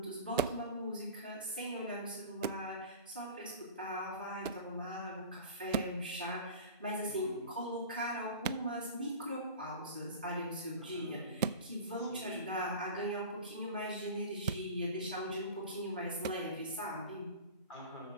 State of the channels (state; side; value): inverted; both; correlation -0.35